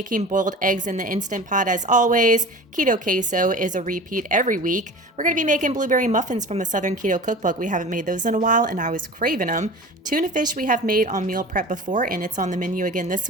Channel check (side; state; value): both; normal; correlation 0.37